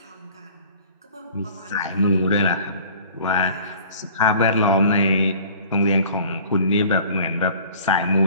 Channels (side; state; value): both; inverted; correlation -0.48